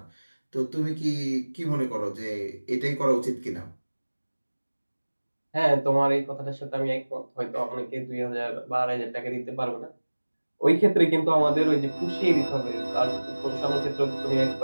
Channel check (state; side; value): inverted; both; correlation -1.00